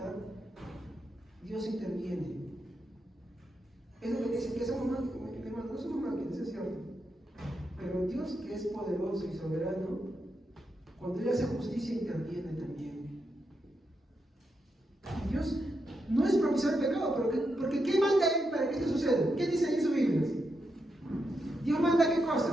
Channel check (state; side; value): normal; both; correlation 0.84